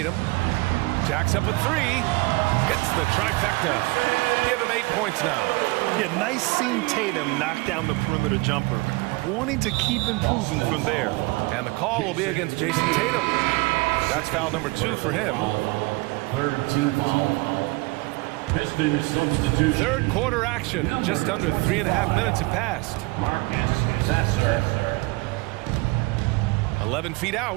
Jacks up a 3. Hits the trifecta. Give him 8 points now. Yeah, nice seeing Tatum knock down the perimeter jumper. Wanting to keep improving from there. And the call will be against Jason Tatum. That's foul number 2 for him. 3rd team foul. Pistons substitution. Third quarter action. Just under 3.5 minutes have passed. Marcus Sasser. 11 feet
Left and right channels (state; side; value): quieter; left; 24.7 dB